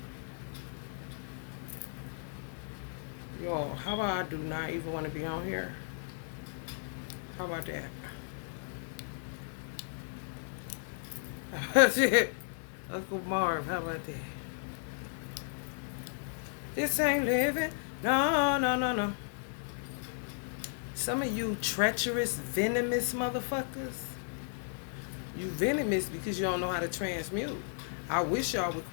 Yo, how about I do not even want to be on here? How about that? Shit. Uncle Marv, how about that? This ain't living. No, no, no, no. Some of you treacherous, venomous motherfuckers. You venomous because you don't know how to transmute. I wish y'all would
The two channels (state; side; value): silent; right; digital silence